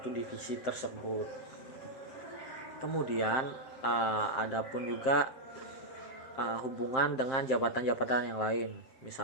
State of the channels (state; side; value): late; right; 7.5 ms